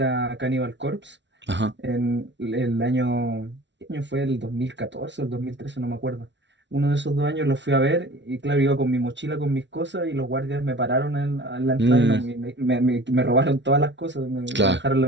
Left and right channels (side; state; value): left; late; 0.52 ms